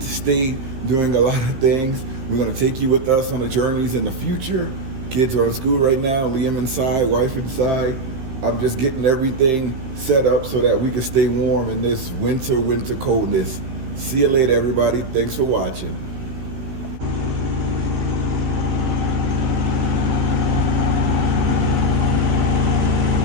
to state, doing a lot of things. We're gonna take you with us on the journeys in the future. Kids are in school right now, Liam inside, wife inside. I'm just getting everything set up so that we can stay warm in this winter coldness. See you later, everybody. Thanks for watching.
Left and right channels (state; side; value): late; left; 16 ms